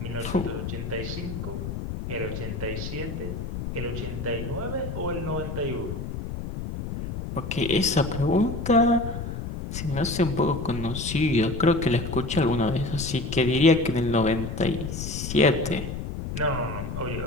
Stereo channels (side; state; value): left; noise; rumble, 6 dB below the sound